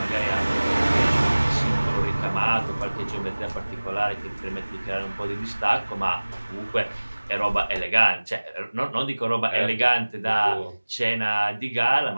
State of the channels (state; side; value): inverted; both; correlation -1.00